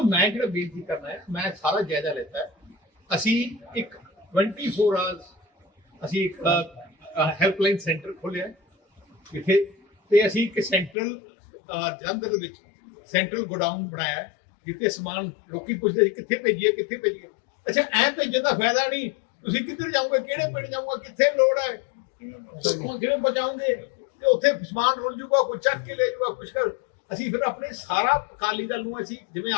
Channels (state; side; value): drops out; right; at 11.0 s